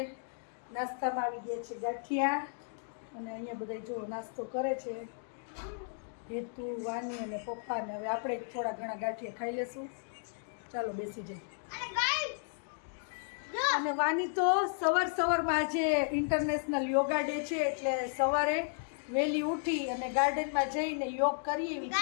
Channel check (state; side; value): silent; right; digital silence